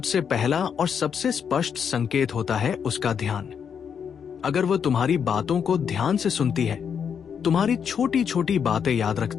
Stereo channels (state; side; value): quieter; right; 7.3 dB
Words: पहला और सबसे स्पष्ट संकेत होता है उसका ध्यान। अगर वह तुम्हारी बातों को ध्यान से सुनती है, तुम्हारी छोटी छोटी बातें याद